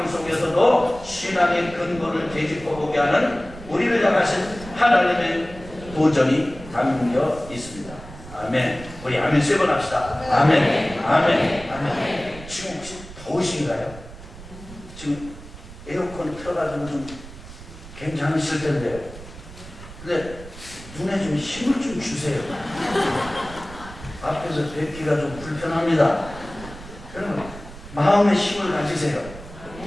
속에서도 신앙의 근본을 되짚어보게 하는 우리를 향하신 하나님의 도전이 담겨 있습니다. 아멘. 우리 아멘 3번 합시다. 아멘. 아멘. 아멘. 지금 혹시 더우신가요? 지금 에어컨 틀어가지고 좀 괜찮으실 텐데요. 근데 눈에 좀 힘을 좀 주세요. 앞에서 뵙기가 좀 불편합니다. 여러분 마음의 힘을 가지세요.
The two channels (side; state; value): right; noise; rumble, 15 dB below the sound